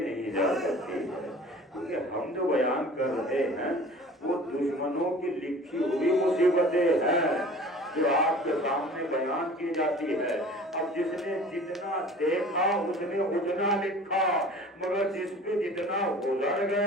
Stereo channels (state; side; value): normal; both; correlation 0.44